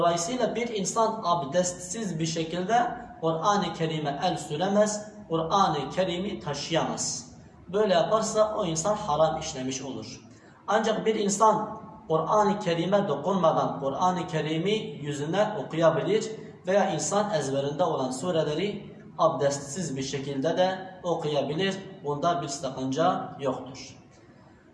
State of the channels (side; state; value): both; identical; correlation 1.00